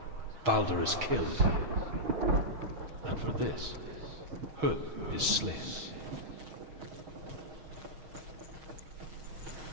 Baldur is killed. And for this, Huth is slain.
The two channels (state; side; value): late; left; 6.3 ms